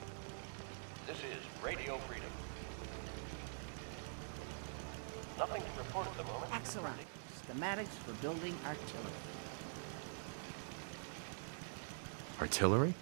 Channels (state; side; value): silent; left; digital silence